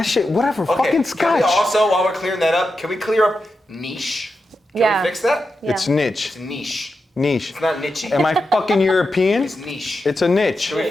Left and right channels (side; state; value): both; normal; correlation 0.88